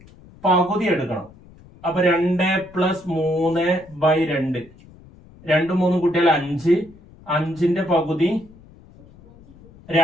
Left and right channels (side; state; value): left; noise; rumble, 24 dB below the sound